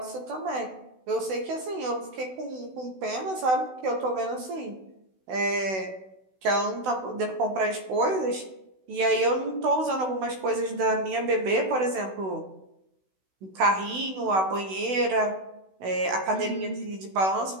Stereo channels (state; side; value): late; left; 16 ms